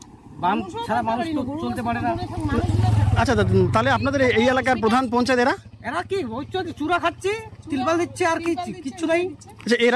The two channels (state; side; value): identical; both; correlation 1.00